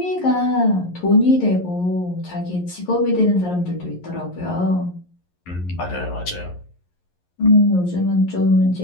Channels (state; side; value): late; right; 11 ms